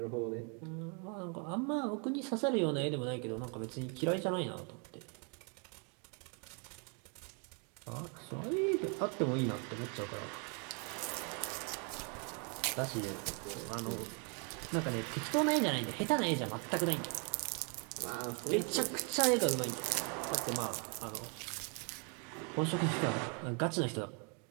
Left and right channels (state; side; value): quieter; left; 37.0 dB